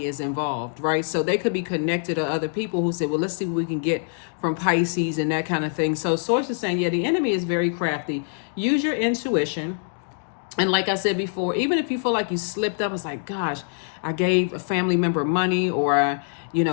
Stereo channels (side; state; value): right; silent; digital silence